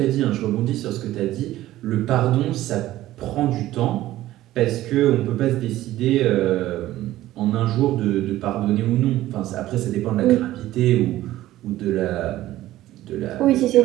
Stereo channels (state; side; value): quieter; left; 15.0 dB